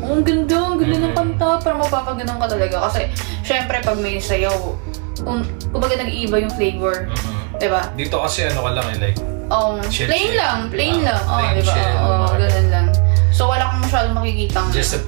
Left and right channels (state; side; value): quieter; left; 35.2 dB